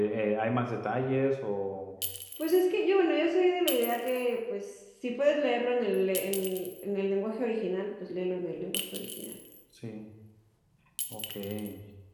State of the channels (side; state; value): both; identical; correlation 1.00